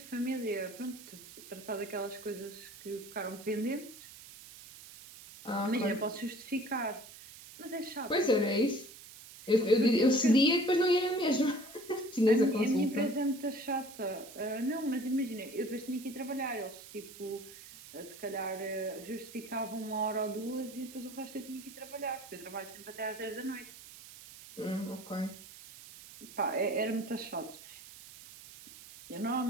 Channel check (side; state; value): right; noise; hiss, 17 dB below the sound